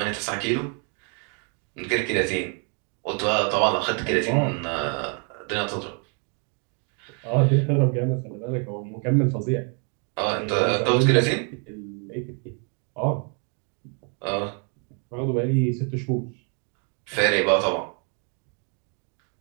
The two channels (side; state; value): left; quieter; 39.2 dB